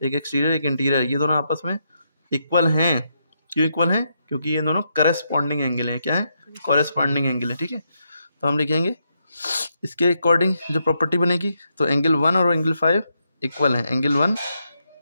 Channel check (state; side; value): inverted; both; correlation -0.80